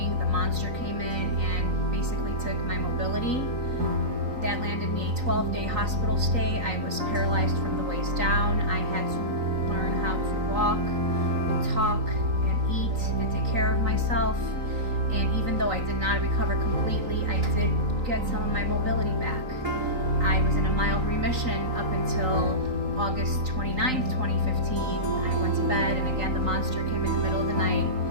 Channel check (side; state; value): left; late; 3.9 ms